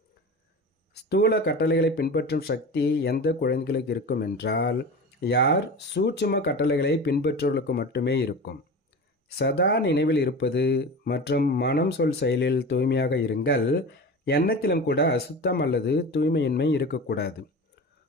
ஸ்தூல கட்டளைகளை பின்பற்றும் சக்தி எந்த குழந்தைகளுக்கு இருக்கும் என்றால், யார் சூட்சும கட்டளைகளை பின்பற்றுவர்களுக்கு மட்டுமே இருக்கும். சதா நினைவில் இருப்பது மற்றும் மனம் சொல் செயலில் தூய்மையாக இருங்கள். எண்ணத்திலும் கூட அசுத்தம் அல்லது தூய்மையின்மை இருக்கக்கூடாது.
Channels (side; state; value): both; normal; correlation 0.31